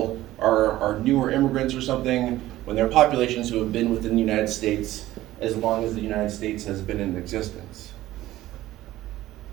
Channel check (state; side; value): quieter; left; 15.4 dB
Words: are newer immigrants or something, when there are populations who have been within the United States as long as the United States has been in existence.